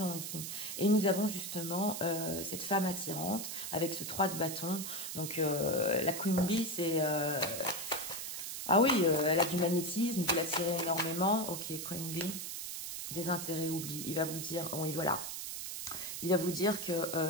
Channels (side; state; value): right; noise; hiss, 6 dB below the sound